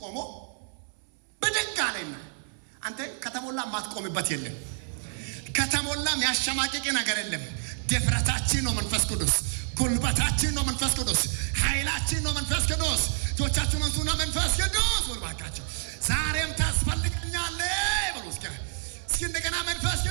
ቆሞ ብድግ አለና አንተ ከተሞላ ማትቆምበት የለም፣ ከተሞላ የሚያሸማቅቅ ነገር የለም። ድፍረታችን ነው መንፈስ ቅዱስ፣ ጉልበታችን ነው መንፈስ ቅዱስ፣ ኃይላችን ነው መንፈስ ቅዱስ። እጆቻችሁን አንሱና መንፈስ ቅዱስ ወልባካችሁ ዛሬም ታስፈልገኛለህ ብሎ እስኪ እንደገና መንፈስ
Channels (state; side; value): silent; left; 59 dB below the other